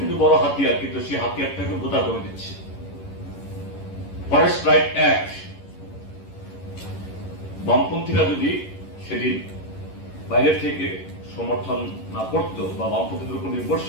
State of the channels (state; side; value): late; right; 11 ms